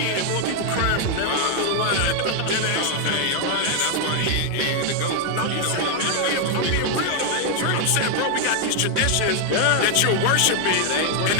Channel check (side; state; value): both; different; correlation 0.00